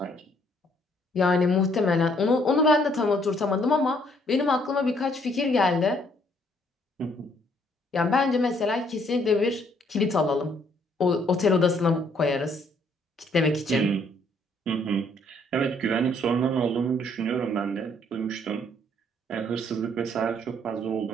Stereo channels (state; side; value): normal; both; correlation 0.66